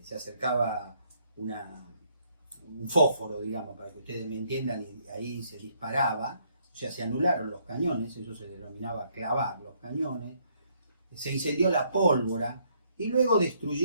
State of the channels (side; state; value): both; inverted; correlation -0.69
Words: se acercaba un fósforo, digamos, para que ustedes me entiendan, y ahí se disparaba, o sea, se anularon los cañones, eso se denominaba clavar los cañones, se incendió la pólvora, y luego